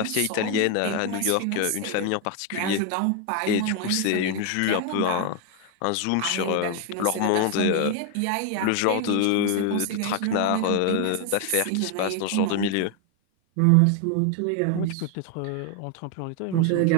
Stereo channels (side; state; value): both; different; correlation 0.01